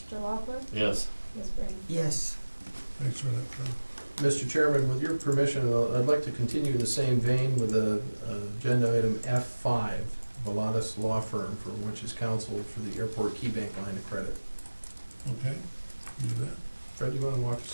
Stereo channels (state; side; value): inverted; both; correlation -1.00